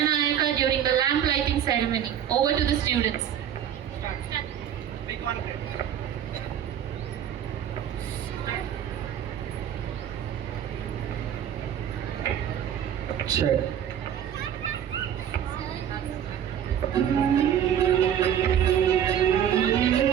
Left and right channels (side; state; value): left; quieter; 9.6 dB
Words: during the lamp lighting ceremony. Over to the students. Big one. Check.